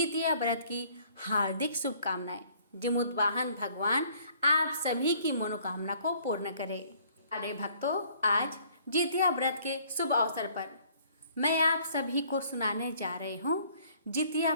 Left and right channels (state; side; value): inverted; both; correlation -0.60